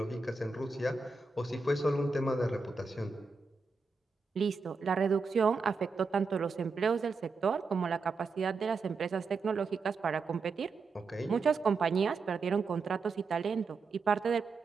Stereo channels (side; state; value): left; quieter; 4.4 dB